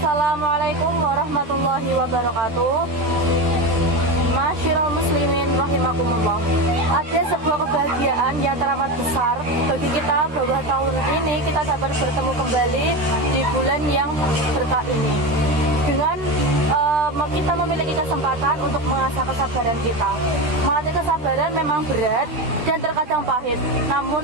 warahmatullahi wabarakatuh. Masyiral muslimin rahimakumullah. Ada sebuah kebahagiaan yang teramat besar bagi kita bahwa tahun ini kita dapat bertemu kembali di bulan yang berkah ini dengan kita memiliki kesempatan untuk mengasah kesabaran kita. Melatih kesabaran memang berat dan terkadang pahit,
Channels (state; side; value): late; left; 13 ms